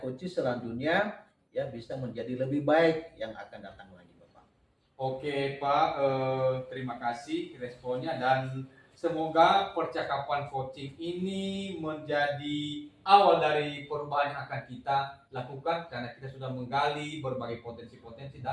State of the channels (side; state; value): both; identical; correlation 1.00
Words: selanjutnya ya bisa menjadi lebih baik yang akan datang lagi Bapak. Oke Pak, terima kasih responnya dan semoga percakapan coaching ini menjadi awal dari perubahan yang akan kita lakukan karena kita sudah menggali berbagai potensi-potensi